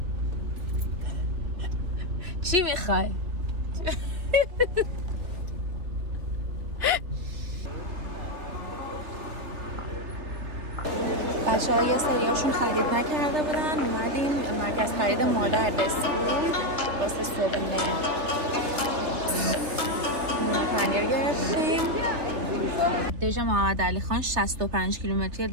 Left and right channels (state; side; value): late; left; 3.3 ms